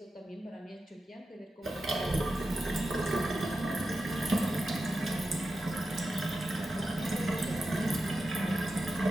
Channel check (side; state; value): both; normal; correlation 0.90